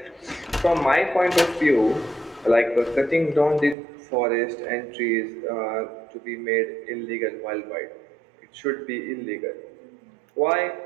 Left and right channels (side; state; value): left; drops out; at 3.8 s